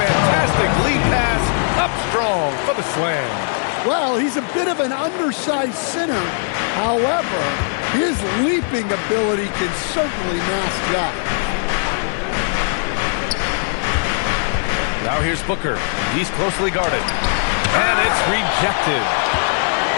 lead pass up strong for the slam. Well, he's a bit of an undersized center. However, his leaping ability can certainly mask that. Now here's Booker. He's closely guarded. And it's rejected.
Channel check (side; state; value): right; silent; digital silence